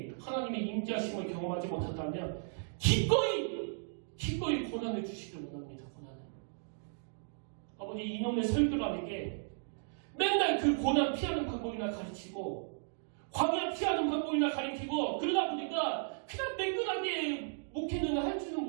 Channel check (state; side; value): silent; left; digital silence